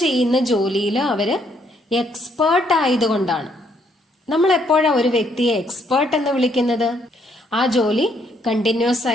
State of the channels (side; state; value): both; normal; correlation 0.70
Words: ചെയ്യുന്ന ജോലിയിൽ അവര് എക്സ്പേർട്ട് ആയതുകൊണ്ടാണ്. നമ്മൾ എപ്പോഴാണ് ഒരു വ്യക്തിയെ എക്സ്പേർട്ട് എന്ന് വിളിക്കുന്നത്? ആ ജോലി കണ്ടിന്യൂസ്